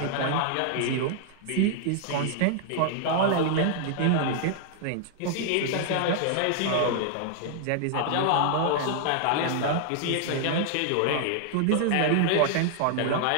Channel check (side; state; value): both; different; correlation 0.00